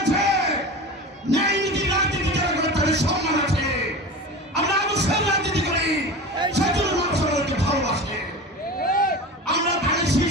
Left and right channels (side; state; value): both; normal; correlation 0.31